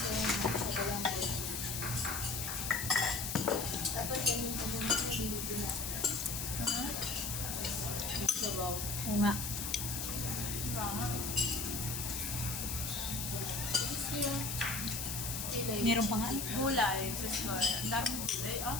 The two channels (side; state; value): left; noise; hiss, 3 dB below the sound